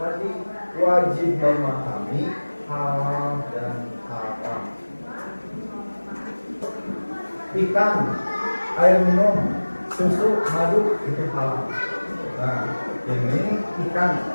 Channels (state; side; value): inverted; both; correlation -1.00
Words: wajib memahami halal dan haram. Ikan, air minum, susu, madu itu halal. Nah, ini ikan